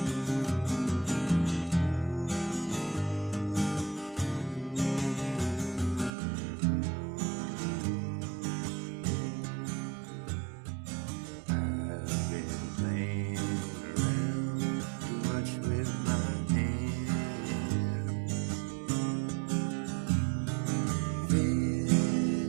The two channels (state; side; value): drops out; left; at 6.1 s